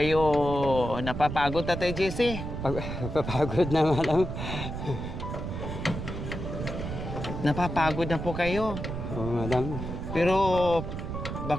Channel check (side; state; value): right; noise; rumble, 6 dB below the sound